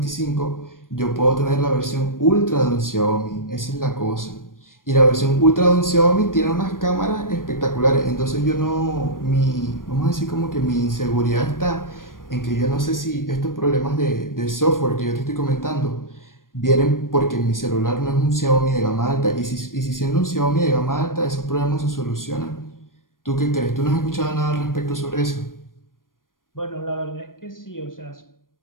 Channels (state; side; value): late; right; 0.90 ms